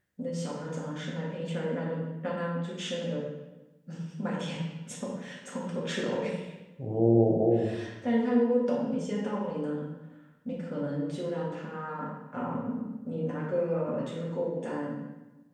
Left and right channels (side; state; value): both; identical; correlation 1.00